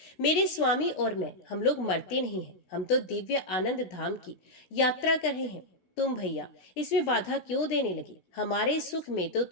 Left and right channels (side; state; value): right; late; 16 ms